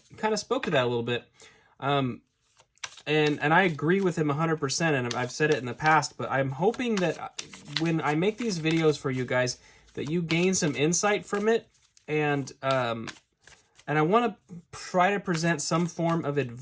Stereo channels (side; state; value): both; identical; correlation 1.00